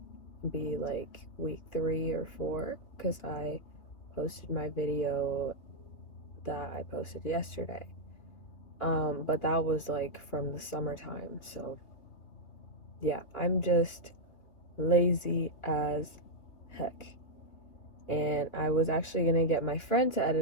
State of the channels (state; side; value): late; right; 2.9 ms